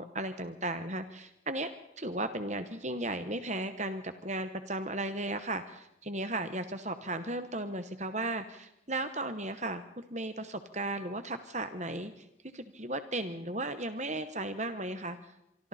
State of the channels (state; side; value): normal; both; correlation 0.16